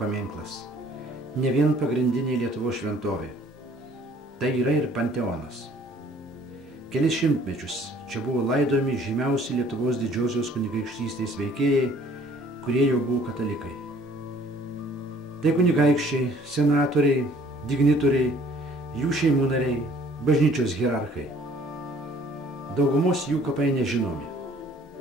ne vien pagrindinė Lietuvos šventovė. Tai yra ir panteonas. Kelis šimtmečius čia buvo laidojami žymiausi Lietuvos didžiosios kunigaikštystės veikėjai, kurie jau buvo katalikai. Tai kunigaikščiai, senatoriai, dignitoriai, jų šeimų nariai, bažnyčios hierarchai. Daugumos jų kapai nežinomi.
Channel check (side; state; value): both; normal; correlation 0.56